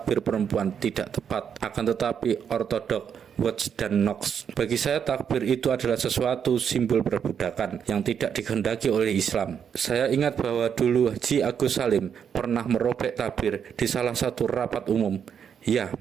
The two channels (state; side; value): quieter; left; 7.7 dB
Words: perempuan tidak tepat. Akan tetapi ortodok, Watts dan Knox, bagi saya takbir itu adalah sesuatu simbol perbudakan yang tidak dikehendaki oleh Islam. Saya ingat bahwa dulu Haji Agus Salim pernah merobek takbir di salah satu rapat umum. Ya,